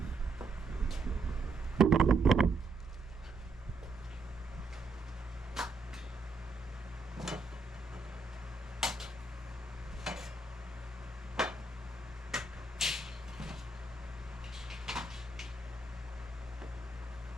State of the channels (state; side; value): quieter; left; 3.2 dB